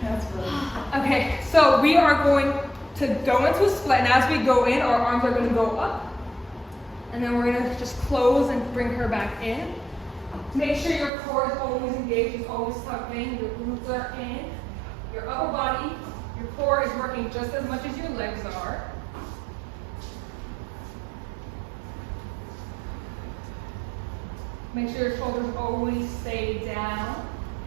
That's really. Okay, so we are going to go into a split, and as we go in, our arms are going to go up. And then we're going to just close and bring her back in. Make sure your core is always engaged, it's always tucked in, your glutes are in, your upper body, your core is working just as much as your legs are. Make sure your shoulders always stay down.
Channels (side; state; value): left; drops out; at 11.1 s